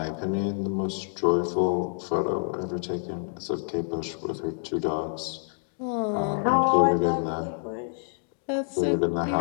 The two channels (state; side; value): silent; right; digital silence